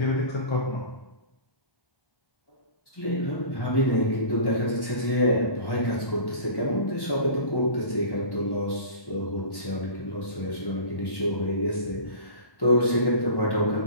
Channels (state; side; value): late; right; 1.1 ms